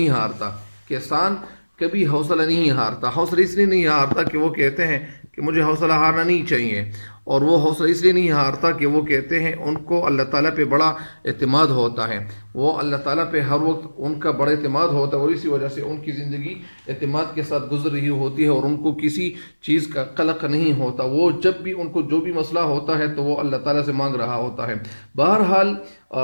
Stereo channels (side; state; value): both; inverted; correlation -1.00